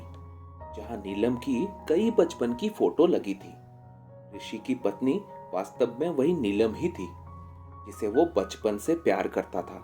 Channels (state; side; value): identical; both; correlation 1.00